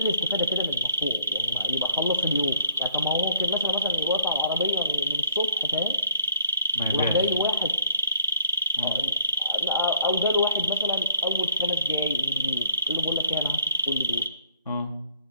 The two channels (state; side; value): inverted; both; correlation -0.64